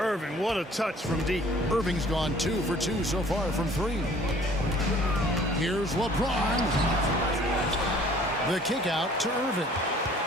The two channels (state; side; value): normal; both; correlation 0.53